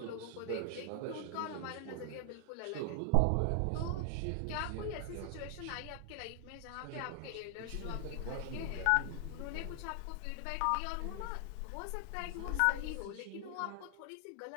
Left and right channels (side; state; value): both; different; correlation 0.00